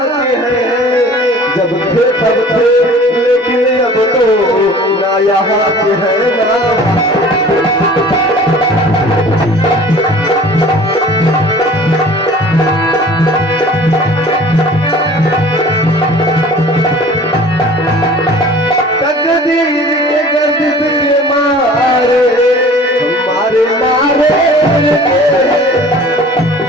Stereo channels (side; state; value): both; normal; correlation 0.46